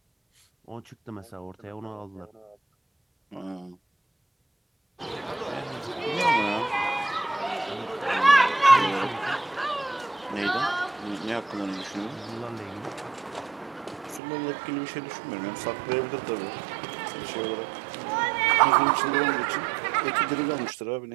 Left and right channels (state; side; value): drops out; left; at 14.2 s